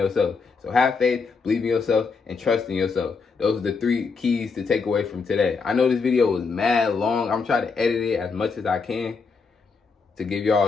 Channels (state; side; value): quieter; right; 4.9 dB